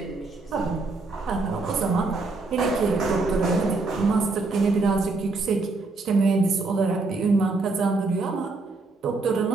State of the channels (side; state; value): left; quieter; 3.6 dB